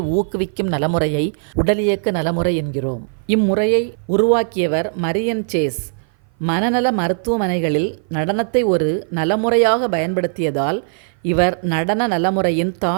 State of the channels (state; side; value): silent; left; 56 dB below the other